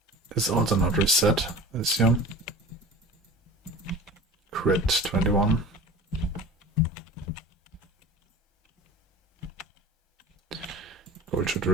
is also not reset, I assume. Crit 21. Gold should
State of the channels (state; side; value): normal; both; correlation 0.38